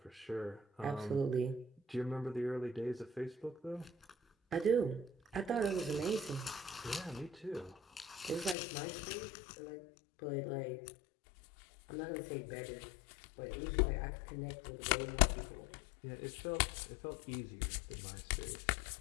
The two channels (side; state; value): right; drops out; at 8.6 s